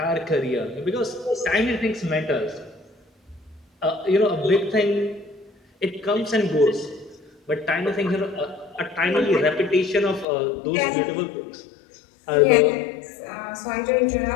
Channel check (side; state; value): right; drops out; at 10.2 s